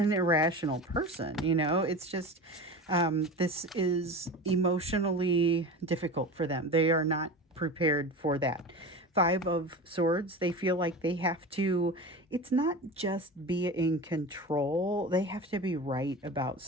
irrational person, you know. It's just this is emotionally difficult for them. They are not prepared for that. Five of Swords, they feel like they have to, it's not just be in control. They have to be right about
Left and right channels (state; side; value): normal; both; correlation 0.30